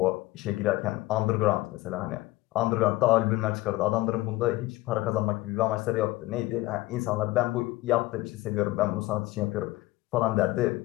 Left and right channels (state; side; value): quieter; right; 18.8 dB